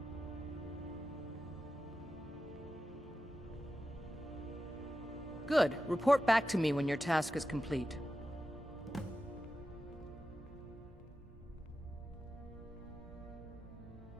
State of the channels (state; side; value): normal; both; correlation 0.91